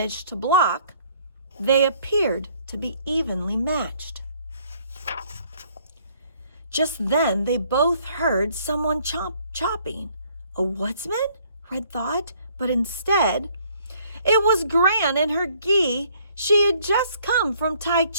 to block. They appeared to be evenly matched. Just then they both heard someone chopping. A woodsman? Red thought, but instead it was Gran in her gi. She had just come from Tai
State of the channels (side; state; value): both; inverted; correlation -0.62